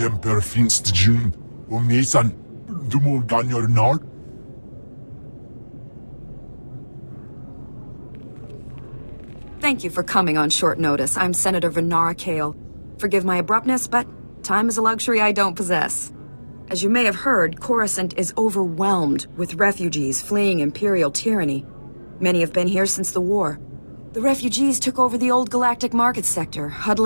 Finst Jun, Nisan, Dumul Ganyor Nard. Thank you for coming on short notice. I'm Senator Venara Kale. Forgive my abruptness, but time is a luxury I don't possess. As you may have heard, Coruscant is overwhelmed with refugees fleeing Imperial tyranny. Many have been here since the war. The refugees took over the old galactic market sector,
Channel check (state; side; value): inverted; both; correlation -1.00